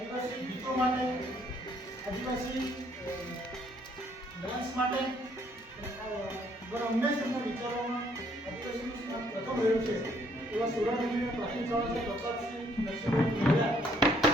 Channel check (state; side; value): normal; both; correlation 0.66